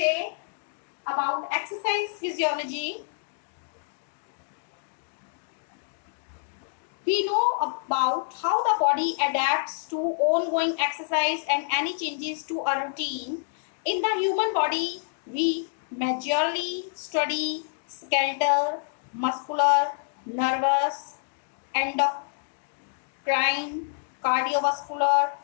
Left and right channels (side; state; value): right; silent; digital silence